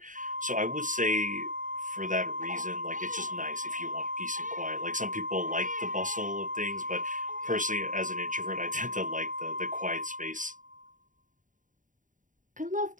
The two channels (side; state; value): left; late; 0.38 ms